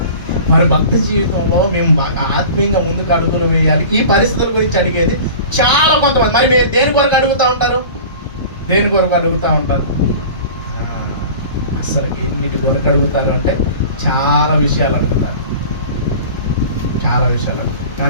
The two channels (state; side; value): inverted; both; correlation -0.40